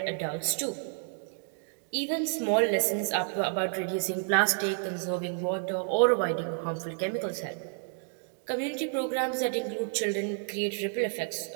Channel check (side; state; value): left; silent; 57 dB below the other